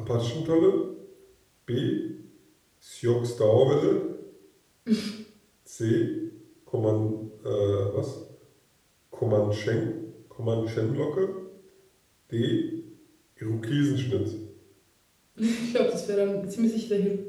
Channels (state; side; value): identical; both; correlation 1.00